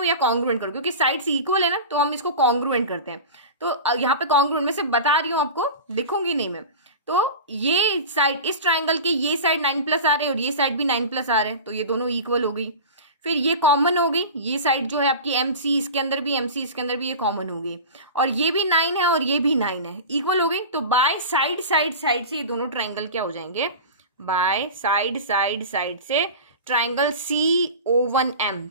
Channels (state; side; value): inverted; both; correlation -0.31